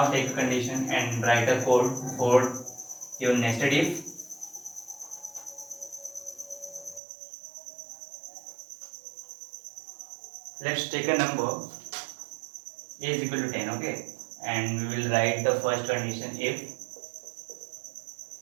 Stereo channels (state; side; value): drops out; left; at 7.0 s